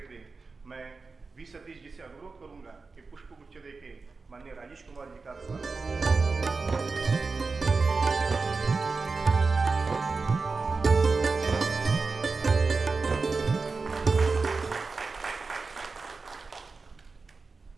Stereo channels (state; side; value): quieter; left; 4.2 dB